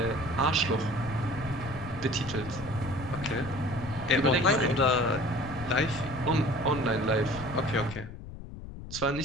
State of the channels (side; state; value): left; noise; rumble, 11 dB below the sound